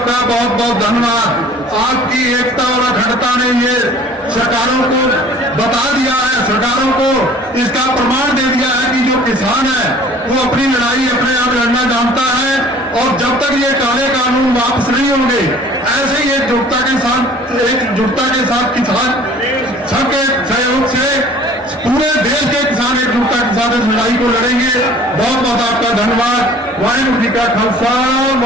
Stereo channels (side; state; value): both; normal; correlation 0.50